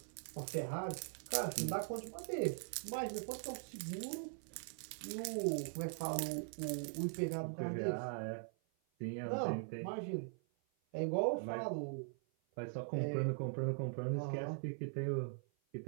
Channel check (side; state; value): left; silent; 50 dB below the other